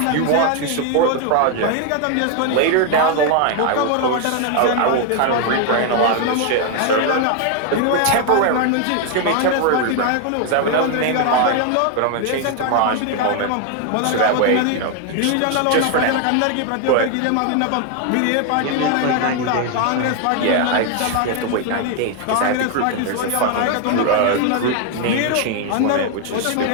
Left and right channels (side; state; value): both; different; correlation 0.01